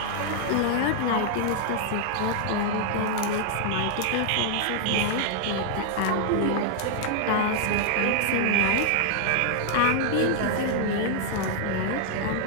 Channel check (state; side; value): different; both; correlation -0.01